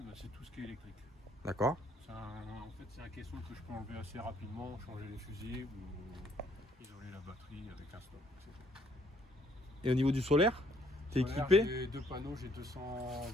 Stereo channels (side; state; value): both; normal; correlation 0.66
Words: bah, c'est tout ce qui est électrique. D'accord. En fait c'est un caisson que je peux enlever assez rapidement, changer les fusils ou isoler la batterie avec un stop. Et au niveau du solaire, t'es Solaire, équipé J'ai deux panneaux, j'ai